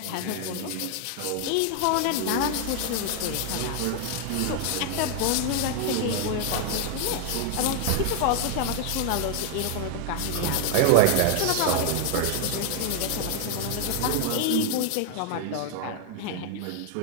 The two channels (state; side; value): different; both; correlation 0.00